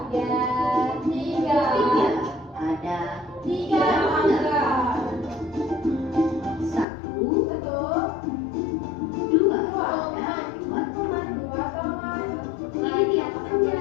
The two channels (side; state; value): right; drops out; at 6.9 s